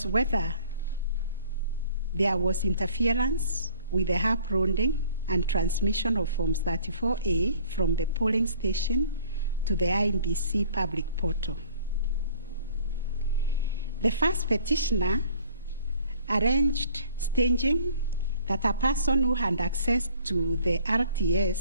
whether there was interference with the uploading and transmission of Forms 34A from the polling station to the IEBC public portal. The first petitioner arranged staging that a person who had access to the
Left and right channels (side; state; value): both; inverted; correlation -0.53